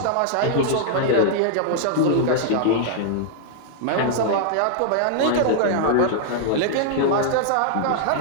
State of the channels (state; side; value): different; both; correlation -0.01